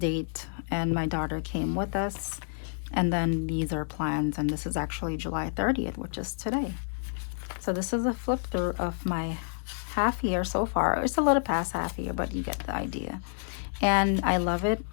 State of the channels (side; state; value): right; silent; 58 dB below the other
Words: and my daughter came with us. And then these are plans, and this is actually July 30th, which is today. So this is a flip through of my half year so far. It's a little past half year, but you get the idea. And I love it.